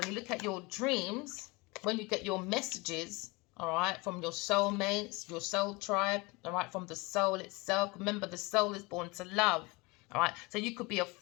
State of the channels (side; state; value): right; quieter; 25.5 dB